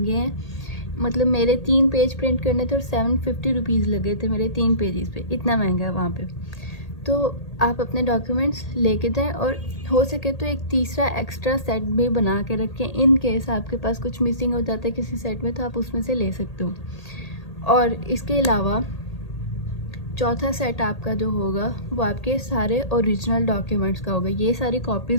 हैं। मतलब मेरे 3 पेज प्रिंट करने थे और 750 रुपीज़ लगे थे मेरे 3 पेजेस पे, इतना महंगा है वहाँ पे। तो आप अपने डॉक्यूमेंट्स लेके जाएं, और हो सके तो एक तीसरा एक्स्ट्रा सेट भी बना के रखें, इन केस आपके पास कुछ मिसिंग हो जाता है किसी सेट में, तो आप उसमें से ले सकते हो। और इसके अलावा चौथा सेट आपका जो होगा वो आपके सारे ओरिजिनल डॉक्यूमेंट्स का होगा, ये सारी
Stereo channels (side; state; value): right; late; 1.8 ms